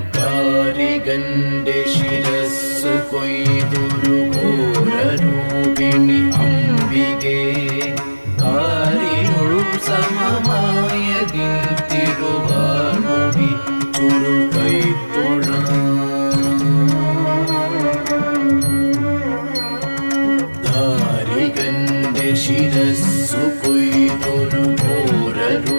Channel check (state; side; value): inverted; both; correlation -1.00